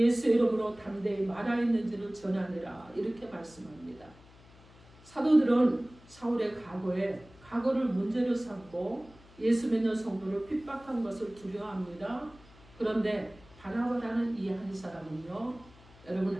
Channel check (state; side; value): noise; left; hum, 24 dB below the sound